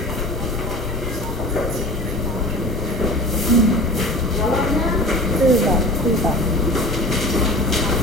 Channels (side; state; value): both; normal; correlation 0.38